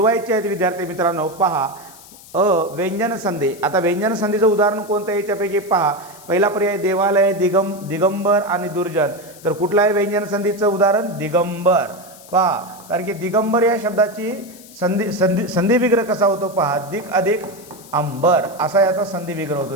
आहेत विद्यार्थी मित्रांनो। पहा व्यंजन संधी। आता व्यंजन संधीचं उदाहरण कोणतं आहे याच्यापैकी पहा, पहिला पर्याय देवालय, दिगंबर आणि दुर्जन। तर कुठलं आहे व्यंजन संधीचं उदाहरण? दिगंबर। पहा, कारण की दिगंबर या शब्दाची संधी विग्रह कसा होतो पहा, दिक अधिक अंबर असा याचा संधी विग्रह होतो,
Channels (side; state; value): left; noise; hiss, 21 dB below the sound